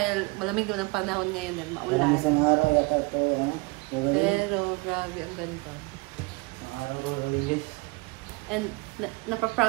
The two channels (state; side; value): quieter; left; 26.3 dB